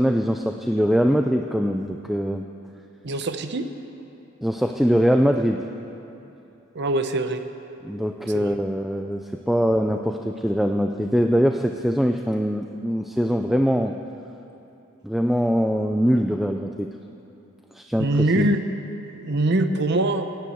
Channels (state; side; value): normal; both; correlation 0.85